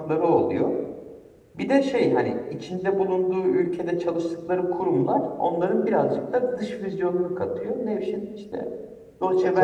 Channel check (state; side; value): identical; both; correlation 1.00